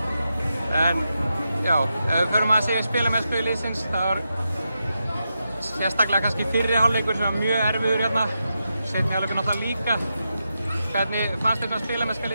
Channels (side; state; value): both; inverted; correlation -0.87